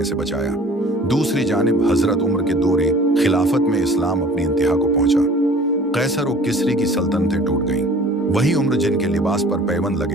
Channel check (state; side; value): normal; both; correlation 0.48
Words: से बचाया। दूसरी जानिब हजरत उमर के दौरे खिलाफत में इस्लाम अपनी इंतहा को पहुंचा। कैसर और किसरी की सल्तनतें टूट गईं। वही उम्र जिनके लिबास पर पैबंद